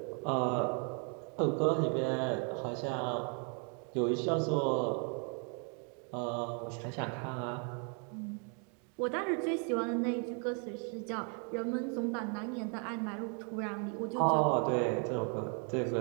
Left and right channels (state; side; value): quieter; left; 39.2 dB